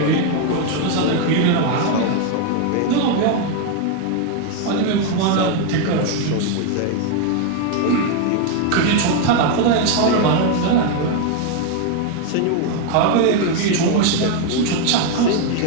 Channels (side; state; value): both; different; correlation 0.01